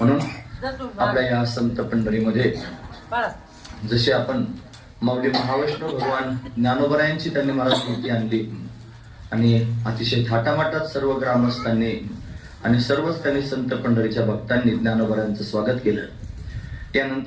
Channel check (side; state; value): both; identical; correlation 1.00